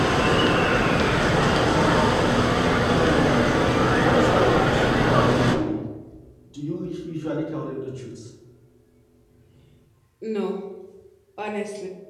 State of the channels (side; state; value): both; identical; correlation 1.00